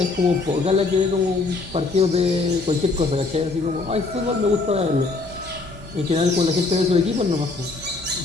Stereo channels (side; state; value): right; quieter; 3.7 dB